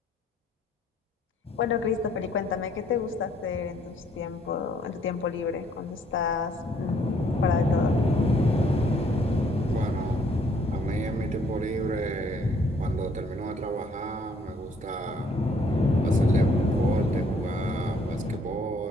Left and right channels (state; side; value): normal; both; correlation 0.64